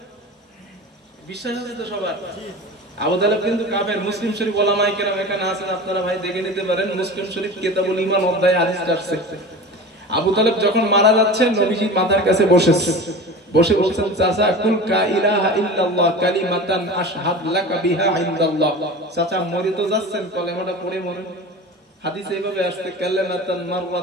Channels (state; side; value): normal; both; correlation 0.33